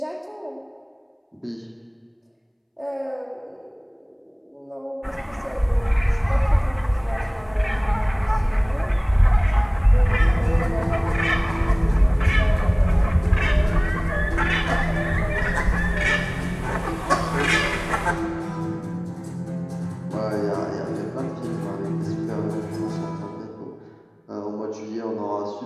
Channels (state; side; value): identical; both; correlation 1.00